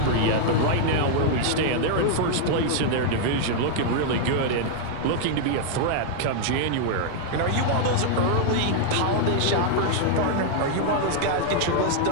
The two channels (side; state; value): both; different; correlation -0.01